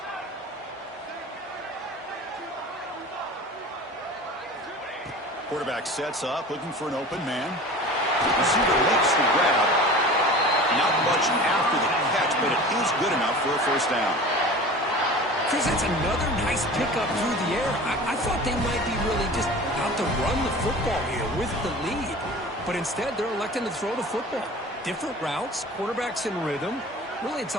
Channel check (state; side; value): normal; both; correlation 0.38